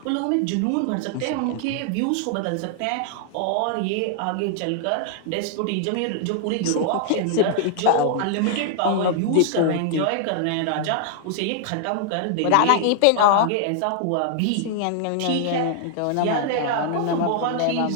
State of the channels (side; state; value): both; different; correlation -0.01